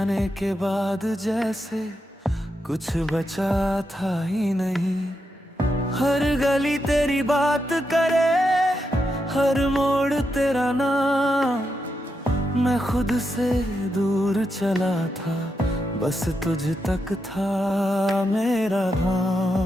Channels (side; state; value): both; normal; correlation 0.84